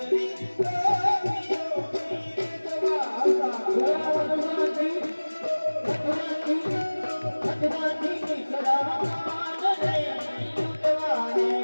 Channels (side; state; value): both; inverted; correlation -1.00